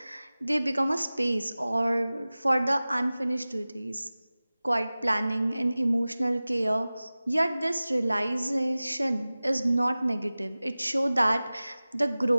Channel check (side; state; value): both; inverted; correlation -0.98